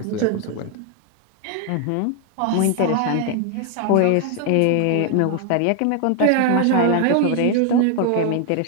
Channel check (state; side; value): different; both; correlation 0.00